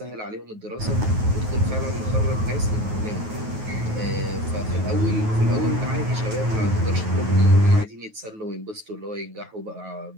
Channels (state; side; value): late; left; 9.3 ms